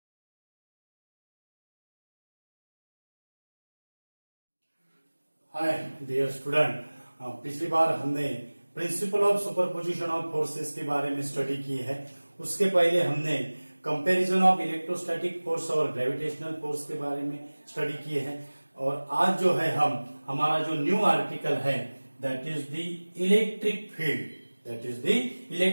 dear student, पिछली बार हमने principle of superposition of forces के बारे में स्टडी की है। उसके पहले हमने कंपैरिजन ऑफ इलेक्ट्रोस्टैटिक फोर्स और ग्रेविटेशनल फोर्स के बारे में स्टडी की है। और आज जो है हमारा जो न्यू आर्टिकल है that is the electric field. That is the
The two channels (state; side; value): inverted; both; correlation -1.00